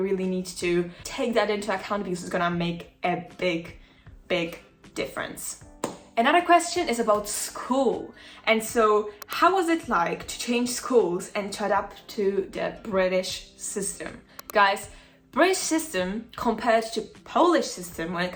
really need to take that into account, because it's gonna make a big, big difference. Another question is about school. And so how was it like to change schools and to adapt to the British system? Guys, British system compared to Polish system when it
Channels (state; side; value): identical; both; correlation 1.00